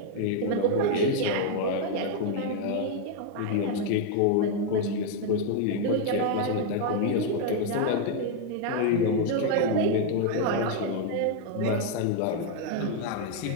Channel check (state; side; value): different; both; correlation 0.00